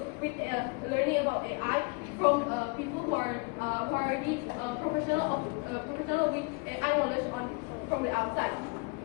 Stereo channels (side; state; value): right; quieter; 32.7 dB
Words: with learning about AI from people who are already professional with AI knowledge from the outside.